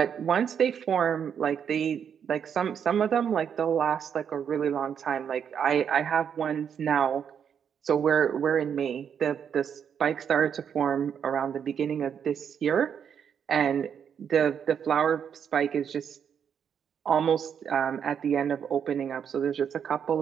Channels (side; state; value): left; quieter; 7.9 dB